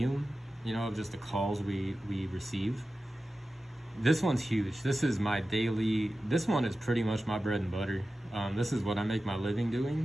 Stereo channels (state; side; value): normal; both; correlation 0.94